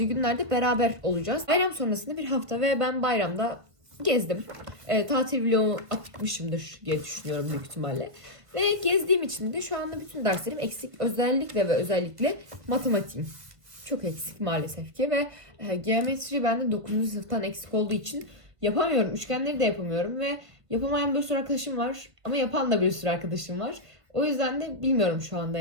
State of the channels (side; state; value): left; late; 1.5 ms